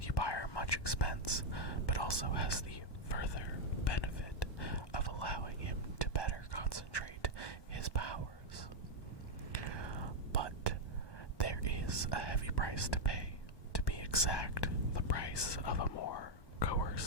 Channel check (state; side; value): late; right; 1.2 ms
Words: much expense, but also has the further benefit of allowing him to better concentrate his powers. But there is a heavy price to pay, to be exact, the price of a more